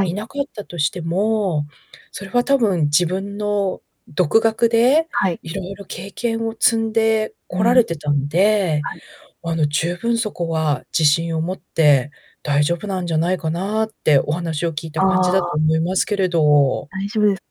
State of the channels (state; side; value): identical; both; correlation 1.00